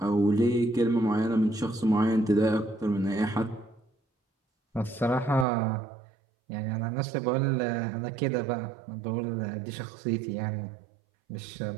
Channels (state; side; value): drops out; left; at 5.5 s